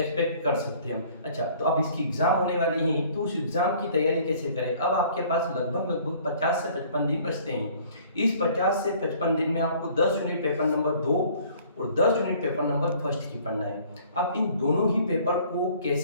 कर सकते हैं हम। अच्छा, तो अब इसकी एग्ज़ाम होने वाली है, तो उस एग्ज़ाम की तैयारी कैसे करें? अब आपके पास लगभग 50 से 55 दिन बचते हैं। इस 50 से 55 दिन में आपको 10 यूनिट पेपर नंबर 2 और 10 यूनिट पेपर नंबर फर्स्ट की पढ़ना है। अब इन दोनों ही पेपर को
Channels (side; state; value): both; inverted; correlation -0.55